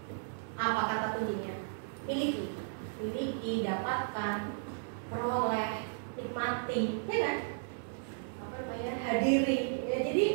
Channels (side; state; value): left; silent; digital silence